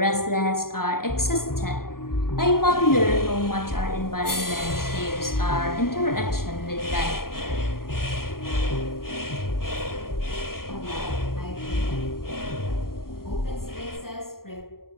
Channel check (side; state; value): right; late; 0.93 ms